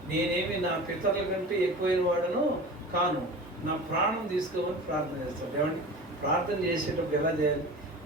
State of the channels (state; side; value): normal; both; correlation 0.35